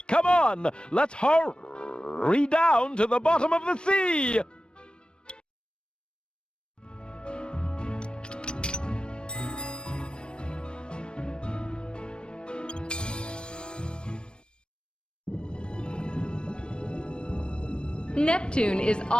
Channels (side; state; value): right; late; 0.054 ms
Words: Come on, let's hurry down to the bottom of the sea! Neptune is